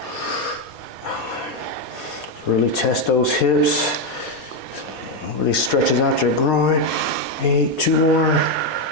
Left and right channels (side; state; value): both; normal; correlation 0.05